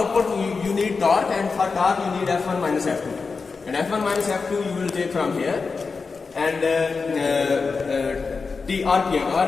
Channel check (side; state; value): right; quieter; 4.7 dB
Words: you need torque, and for torque, you need F1 minus F2. And F1 minus F2 you will take from here. And RPM.